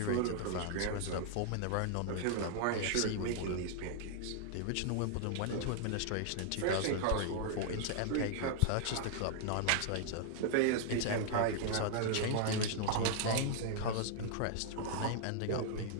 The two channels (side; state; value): both; different; correlation 0.00